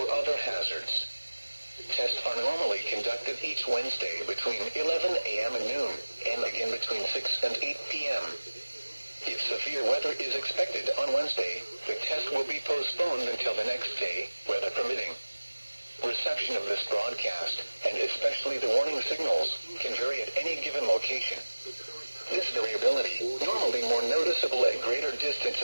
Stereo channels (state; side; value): inverted; both; correlation -1.00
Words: other hazards. Tests are normally conducted each Wednesday between 11 a.m. and noon, and again between 6 and 8 p.m. If severe weather is expected on Wednesday, the test will be postponed until the next day, weather permitting. Reception of this broadcast, and especially the warning signals, can vary at any given location. This variability, normally more noticeable at greater